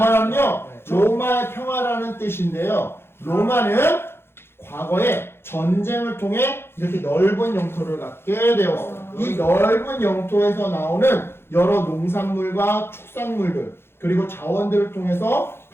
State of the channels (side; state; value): right; late; 0.11 ms